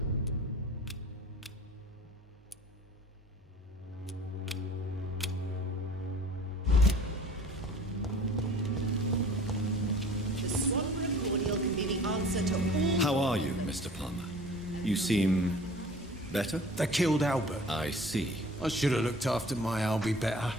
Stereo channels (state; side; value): normal; both; correlation 0.46